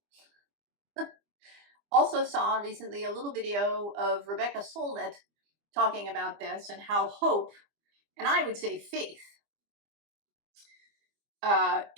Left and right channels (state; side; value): late; left; 25 ms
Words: also saw recently a little video of Rebecca Solnit talking about this and how hope, and I would say faith,